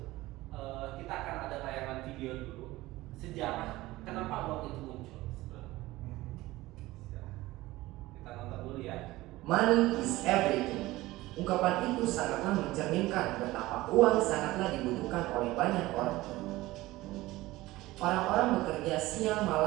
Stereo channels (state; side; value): quieter; left; 18.3 dB